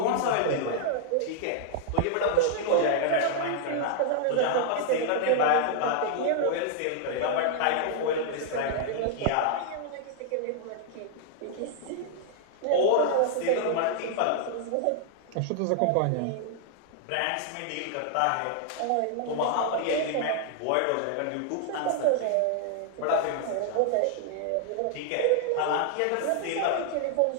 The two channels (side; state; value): both; different; correlation -0.01